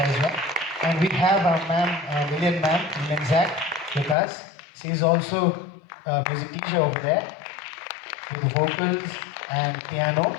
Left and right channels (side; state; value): right; drops out; at 4.2 s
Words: as well. And we have our Lillian Zac with us. She is also a music teacher over there with the vocals and piano.